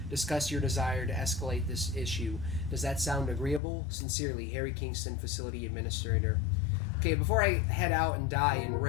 discuss your desire to escalate this issue. Does that sound agreeable? Sincerely, Harry Kingston, Facility Administrator. Okay, before I head out and die in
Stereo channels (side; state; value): right; drops out; at 3.6 s